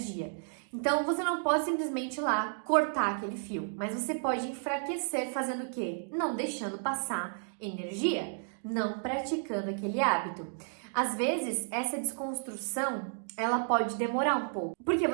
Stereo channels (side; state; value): left; silent; digital silence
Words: Então, você não pode simplesmente ir lá cortar aquele fio, mas você pode enfraquecer fazendo o quê? Não deixando passar energia, não praticando aquele hábito. Às vezes, essa desconstrução, ela pode demorar um pouco, porque